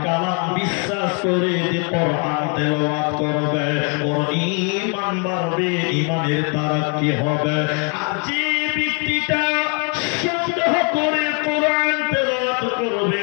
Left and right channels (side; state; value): right; quieter; 37.3 dB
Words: কালাম বিশ্বাস করে যে কোরআন তেলাওয়াত করবে, ওর ঈমান বাড়বে, ঈমানের তারাক্কি হবে। আর যে ব্যক্তিটা সন্দেহ করে কোরআন তেলাওয়াত করবে,